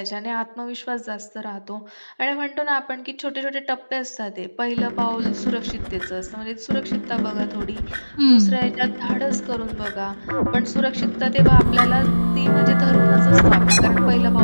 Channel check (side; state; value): both; inverted; correlation -1.00